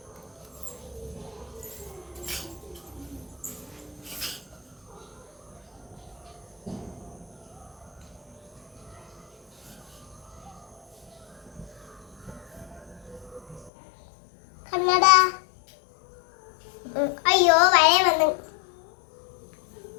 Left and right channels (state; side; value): drops out; right; at 13.7 s